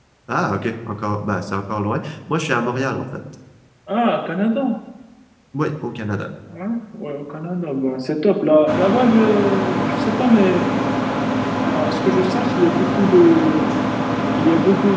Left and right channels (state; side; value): identical; both; correlation 1.00